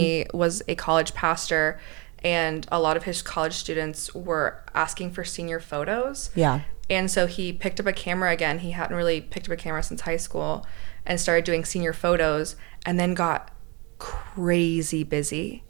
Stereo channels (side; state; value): left; quieter; 29.1 dB